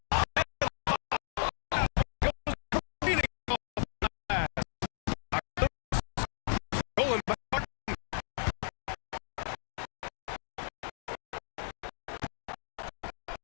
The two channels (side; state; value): right; silent; digital silence